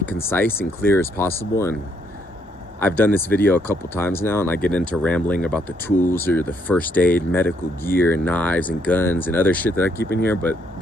and clear as possible. And I've done this video a couple times now, and I get into rambling about the tools or the first aid, medical gear, and knives and guns and other shit that I keep in here, but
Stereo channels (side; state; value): both; normal; correlation 0.72